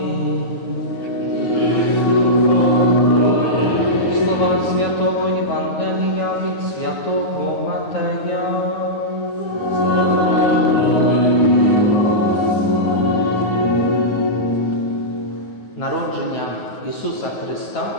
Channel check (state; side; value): late; right; 9.5 ms